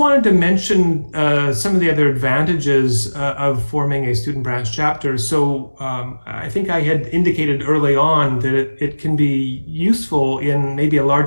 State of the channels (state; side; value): inverted; both; correlation -1.00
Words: to mention some of the other advantages of forming a student branch chapter. So I think I had indicated early on that it can be useful in maybe a